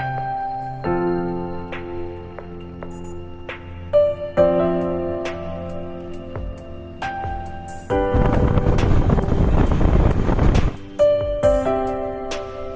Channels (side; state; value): both; identical; correlation 1.00